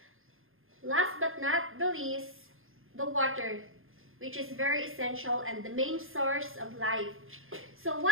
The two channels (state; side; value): late; left; 0.60 ms